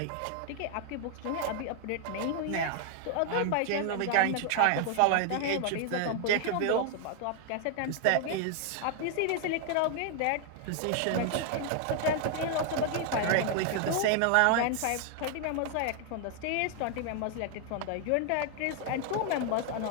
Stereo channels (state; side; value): different; both; correlation 0.00